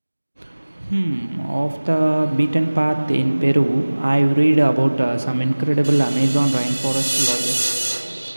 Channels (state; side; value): inverted; both; correlation -1.00